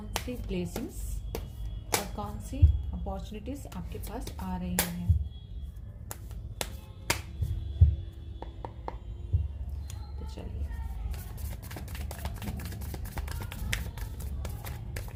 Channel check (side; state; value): both; identical; correlation 1.00